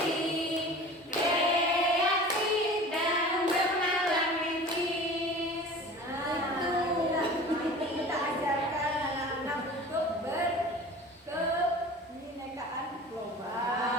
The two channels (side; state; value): both; normal; correlation 0.40